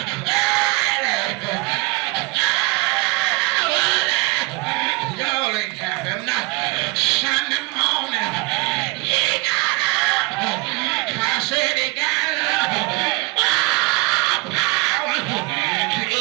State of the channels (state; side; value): quieter; left; 25.8 dB